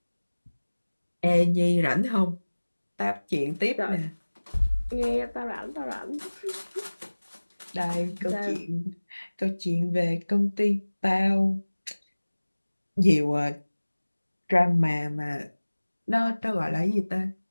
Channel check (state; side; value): inverted; both; correlation -1.00